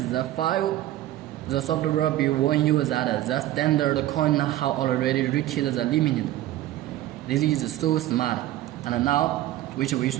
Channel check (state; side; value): quieter; left; 14.3 dB